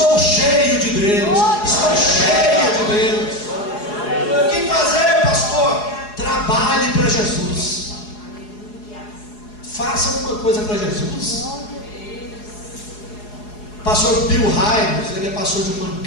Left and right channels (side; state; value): right; late; 4.8 ms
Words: cheio de Deus, estou cheio de Deus. O que fazer, pastor? Trabalhe para Jesus, faça alguma coisa para Jesus. Pastor Bill Hybels, ele é pastor de uma